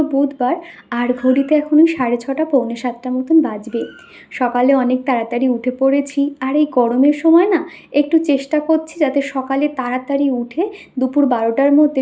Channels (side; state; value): both; identical; correlation 1.00